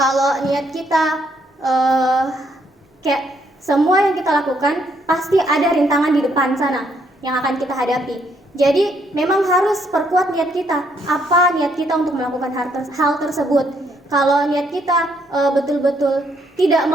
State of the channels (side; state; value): both; normal; correlation 0.72